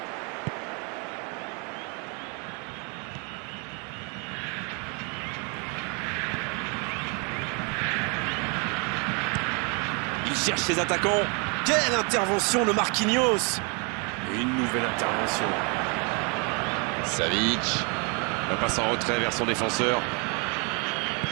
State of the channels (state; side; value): quieter; left; 34.0 dB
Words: Il cherche ses attaquants. Quelle intervention de Marquinhos. Et une nouvelle intervention. Savic. La passe en retrait vers son défenseur.